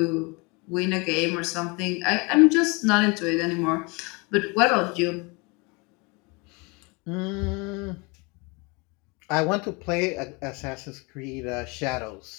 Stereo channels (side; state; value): right; quieter; 28.8 dB